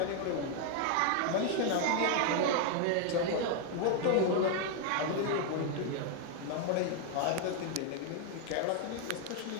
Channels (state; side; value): different; both; correlation 0.00